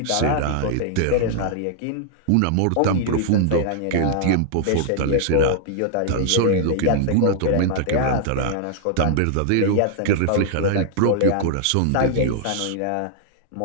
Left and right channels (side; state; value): both; different; correlation -0.01